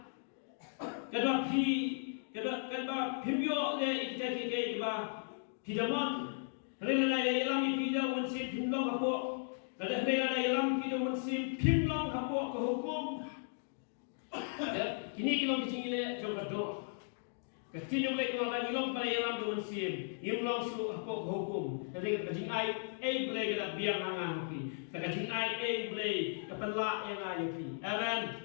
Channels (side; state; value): right; silent; digital silence